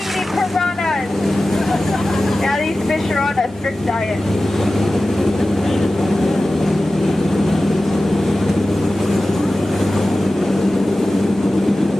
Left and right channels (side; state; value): both; normal; correlation 0.95